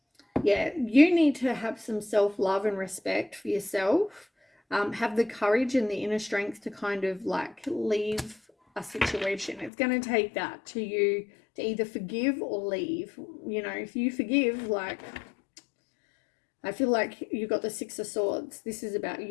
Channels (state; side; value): drops out; right; at 9.7 s